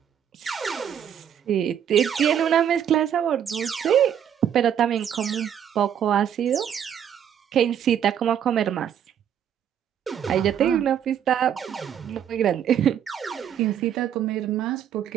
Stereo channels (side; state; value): left; quieter; 9.1 dB